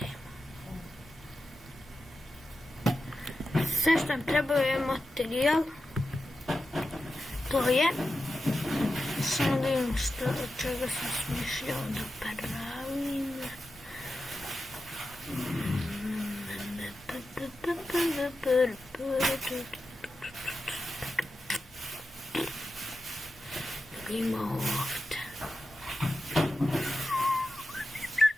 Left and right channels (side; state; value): both; normal; correlation 0.91